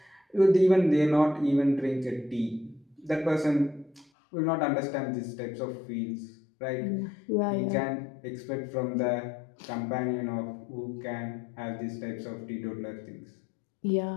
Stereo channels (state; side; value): drops out; right; at 4.0 s